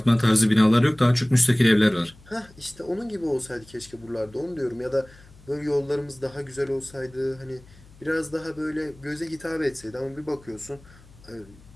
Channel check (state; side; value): noise; left; hum, 24 dB below the sound